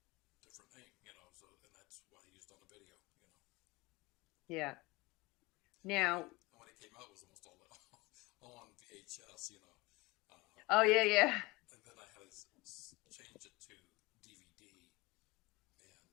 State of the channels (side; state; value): right; quieter; 22.9 dB